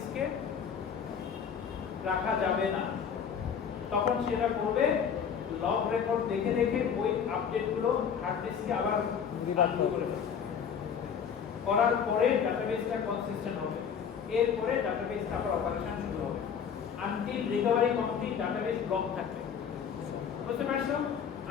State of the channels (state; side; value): quieter; right; 7.3 dB